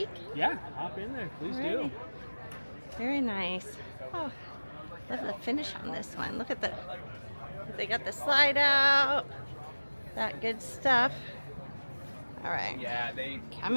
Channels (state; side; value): inverted; both; correlation -1.00